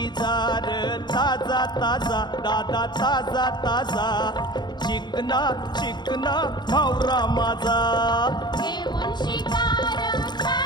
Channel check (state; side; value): late; right; 0.21 ms